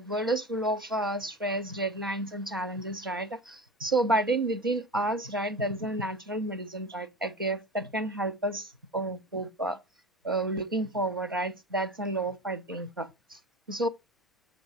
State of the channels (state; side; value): normal; both; correlation 0.30